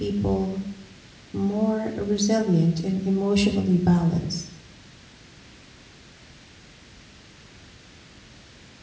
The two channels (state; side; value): identical; both; correlation 1.00